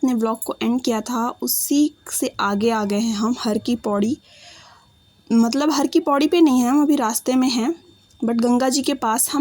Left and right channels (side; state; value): both; identical; correlation 1.00